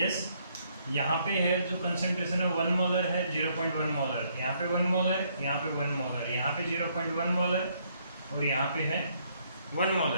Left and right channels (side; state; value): both; inverted; correlation -0.69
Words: यहाँ पे है जो कंसंट्रेशन है 1 मोलर है, 0.1 मोलर, यहाँ पे 1 मोलर, यहाँ पे 1 मोलर, यहाँ पे 0.1 मोलर और यहाँ पे है 1